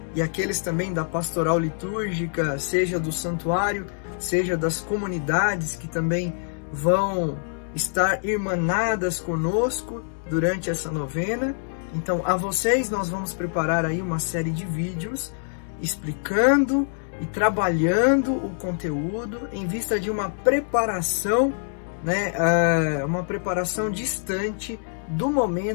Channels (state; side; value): silent; right; digital silence